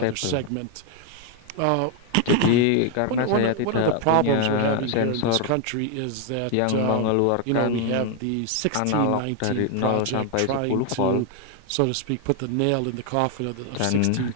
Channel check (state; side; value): different; both; correlation 0.01